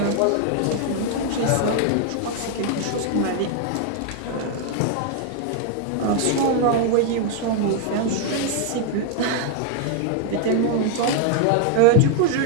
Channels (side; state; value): both; different; correlation 0.00